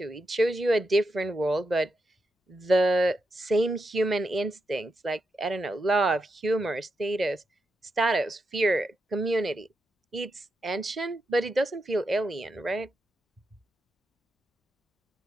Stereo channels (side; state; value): both; normal; correlation 0.86